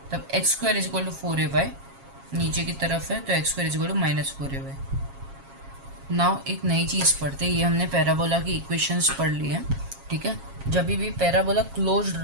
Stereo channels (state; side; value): late; left; 7.3 ms